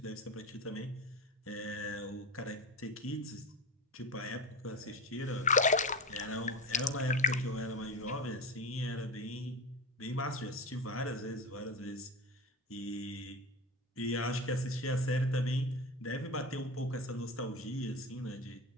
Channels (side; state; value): both; normal; correlation 0.23